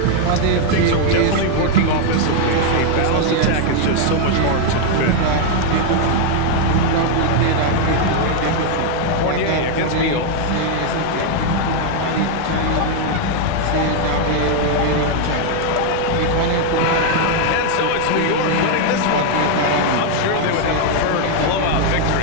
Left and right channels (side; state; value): both; different; correlation 0.00